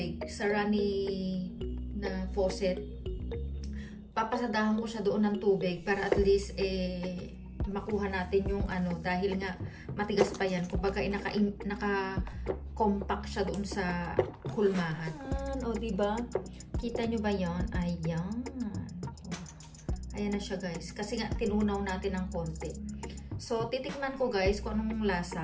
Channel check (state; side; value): identical; both; correlation 1.00